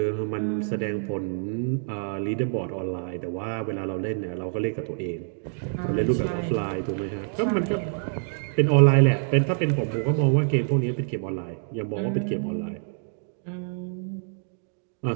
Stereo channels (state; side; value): silent; left; 61 dB below the other